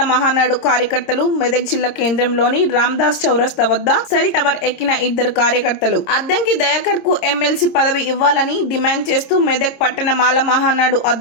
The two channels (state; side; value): late; right; 26 ms